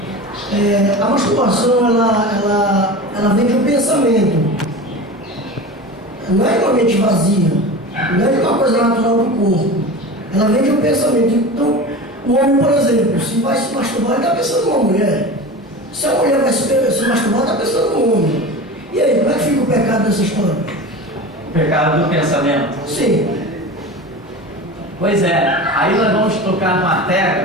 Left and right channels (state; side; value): normal; both; correlation 0.31